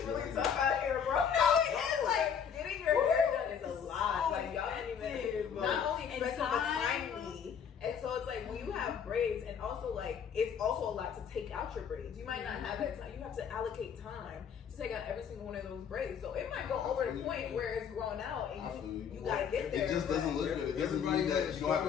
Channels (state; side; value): quieter; right; 7.5 dB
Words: really tough out here, bro. No, it is. Like, getting your hair done is a lot. Like, y'all didn't even, not only expensive, but timely. And so it's like, when you have braids, and also like, it's also a lot to take out your braids. You might not have that time. You have to allocate time to take out every single one of those braids. So it might go over the point where it's grown out, and you gotta get there. It just doesn't look good. It doesn't mean that you don't have